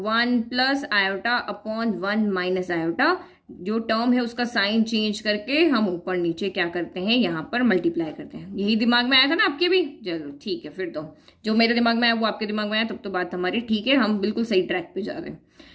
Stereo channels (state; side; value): identical; both; correlation 1.00